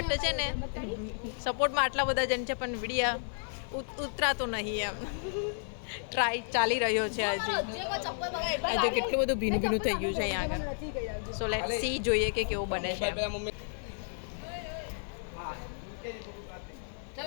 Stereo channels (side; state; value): right; silent; digital silence